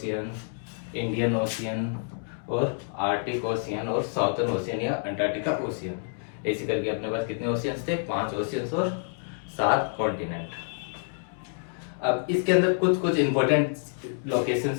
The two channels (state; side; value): silent; right; 59 dB below the other